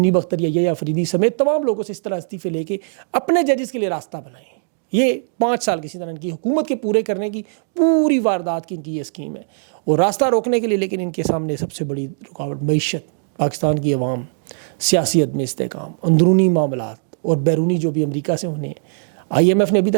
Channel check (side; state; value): left; silent; digital silence